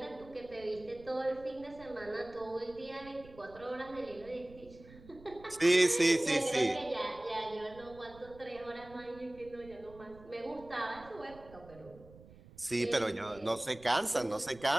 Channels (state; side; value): noise; right; rumble, 21 dB below the sound